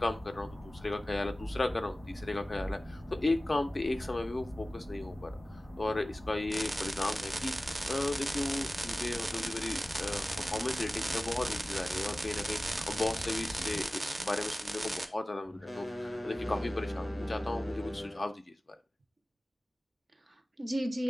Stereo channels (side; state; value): both; normal; correlation 0.96